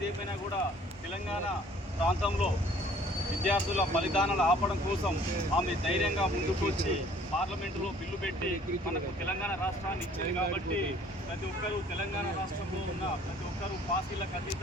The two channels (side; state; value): both; normal; correlation 0.55